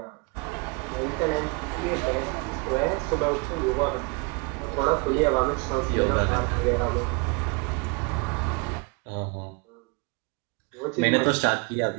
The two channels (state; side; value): quieter; left; 30.4 dB